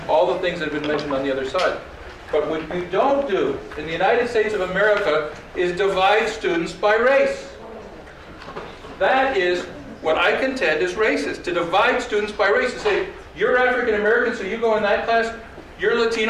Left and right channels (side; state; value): both; identical; correlation 1.00